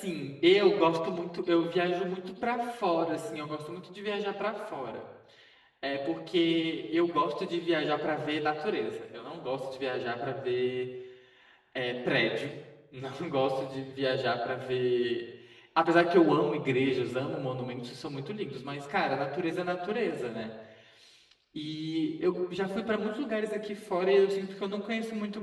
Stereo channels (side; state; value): both; identical; correlation 1.00